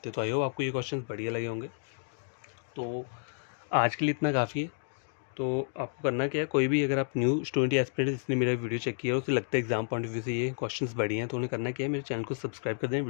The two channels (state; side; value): silent; right; digital silence